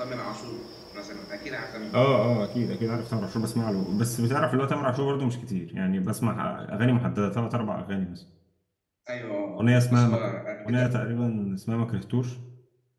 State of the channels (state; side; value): identical; both; correlation 1.00